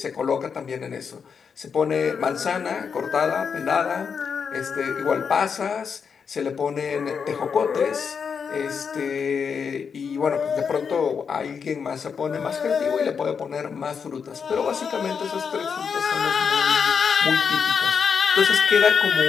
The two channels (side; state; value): right; quieter; 6.3 dB